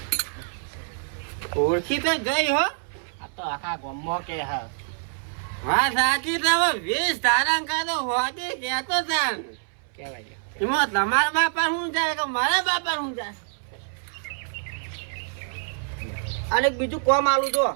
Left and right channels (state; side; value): silent; left; 61 dB below the other